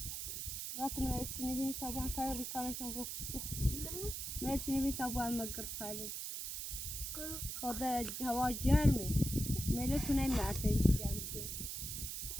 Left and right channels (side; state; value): right; noise; hiss, 5 dB below the sound